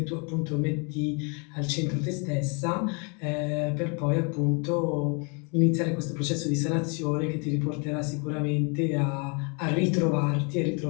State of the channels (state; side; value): quieter; right; 34.4 dB